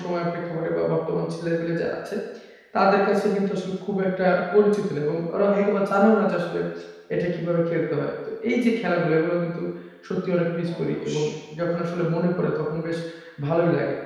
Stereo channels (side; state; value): both; identical; correlation 1.00